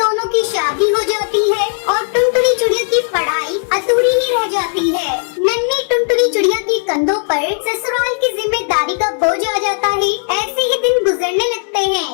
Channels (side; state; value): right; silent; 61 dB below the other